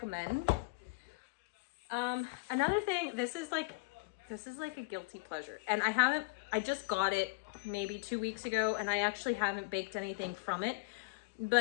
Another thing, this is like a guilty pleasure, and I just got it maybe 2 weeks ago, and I actually haven't baked anything from it.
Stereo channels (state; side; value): quieter; right; 28.5 dB